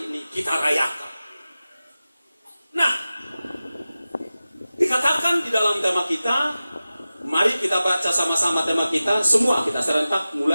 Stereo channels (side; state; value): both; inverted; correlation -0.95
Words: ini kita rayakan. Nah, dikatakan di dalam tema kita Mari kita baca sama-sama tema kita. Semua kita serentak,